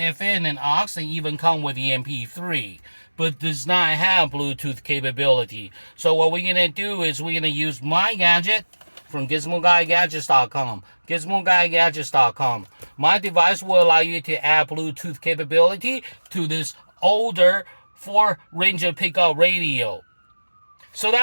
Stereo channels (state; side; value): inverted; both; correlation -1.00